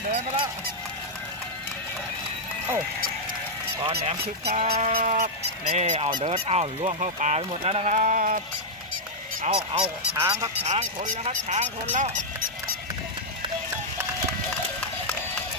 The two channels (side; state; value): both; normal; correlation -0.05